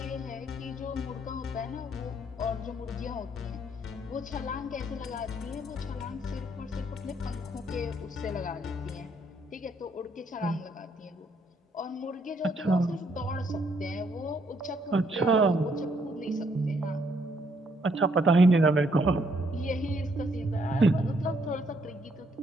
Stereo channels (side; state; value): both; normal; correlation 0.70